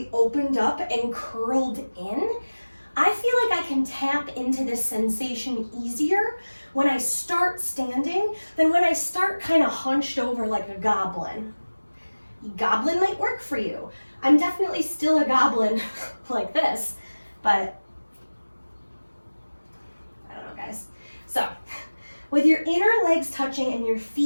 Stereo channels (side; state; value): both; inverted; correlation -1.00